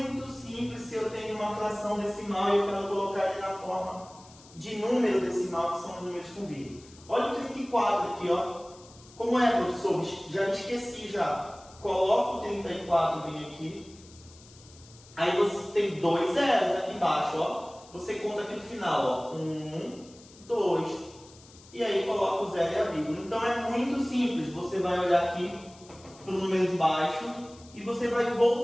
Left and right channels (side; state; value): left; noise; hiss, 23 dB below the sound